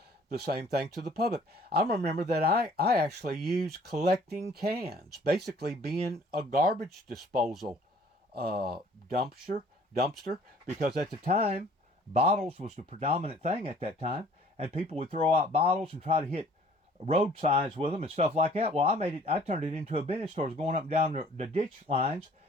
the same thing to the public. I remember that I actually used collecting cans, basically being a garbage disposal dumpster, because at the time, bottles was the predominant thing at that time, and people would throw out bottles and try to hit road signs with them and stuff like that. Well, I turned it into a business store, going up and down the ditch lines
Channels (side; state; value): both; normal; correlation 0.55